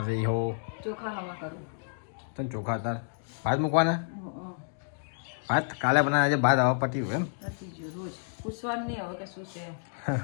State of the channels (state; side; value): silent; right; digital silence